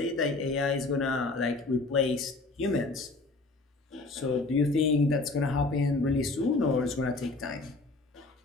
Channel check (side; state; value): right; quieter; 3.3 dB